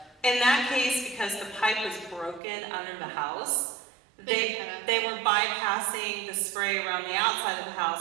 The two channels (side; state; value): left; drops out; at 2.4 s